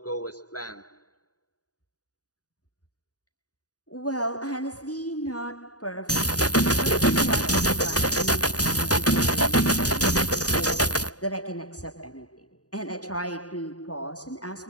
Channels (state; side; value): late; right; 0.68 ms